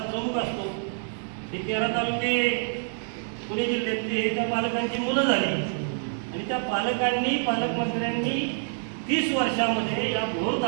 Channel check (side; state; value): left; silent; 60 dB below the other